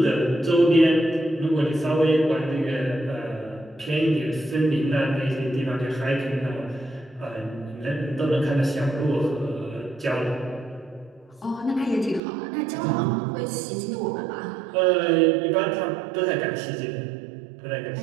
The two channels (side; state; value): left; drops out; at 12.2 s